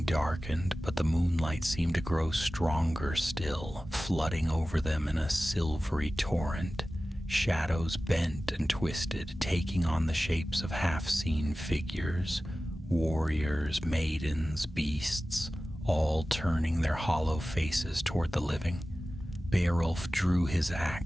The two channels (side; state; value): both; normal; correlation 0.96